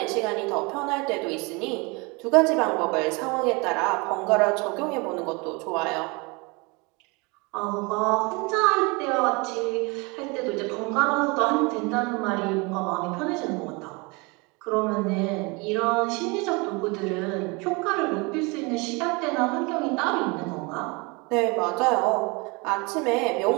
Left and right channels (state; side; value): quieter; left; 27.9 dB